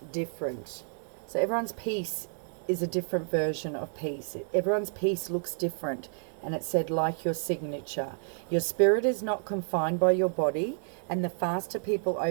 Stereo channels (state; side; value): silent; left; 58 dB below the other